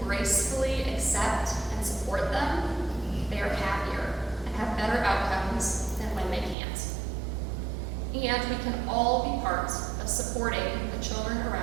gracefully accept and support them, they are happier and have better outcomes than when they can't. And we can all be part of supporting the children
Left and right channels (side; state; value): left; drops out; at 6.6 s